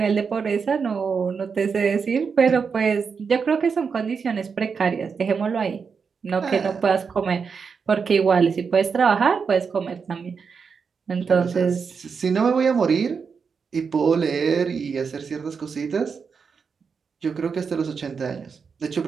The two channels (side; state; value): left; quieter; 5.8 dB